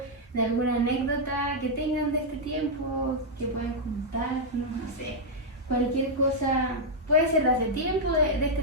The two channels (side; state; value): both; normal; correlation -0.04